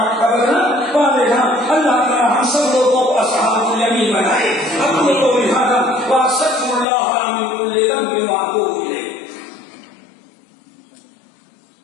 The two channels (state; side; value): drops out; right; at 6.9 s